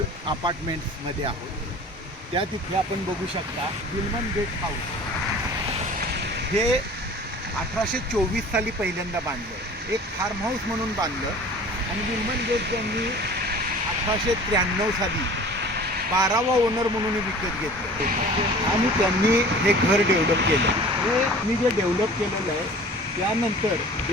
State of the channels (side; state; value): both; normal; correlation 0.44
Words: अपार्टमेंट्समध्ये आहोत. त्या तिथे आपण बघू शकता विल्मन गेट हाऊस. हे 1824 साली पहिल्यांदा बांधलं, एक फार्म हाऊस म्हणून बांधलं आणि विल्मन गेट त्यांनी 1893 साली 12वा ओनर म्हणून विकत घेतलं आणि त्यांनी हे घर डेव्हलप केलं. हे मी जे डेव्हलप केलेलं आहे त्यानंतर